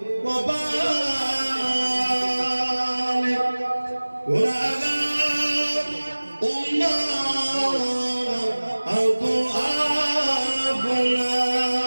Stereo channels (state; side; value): inverted; both; correlation -1.00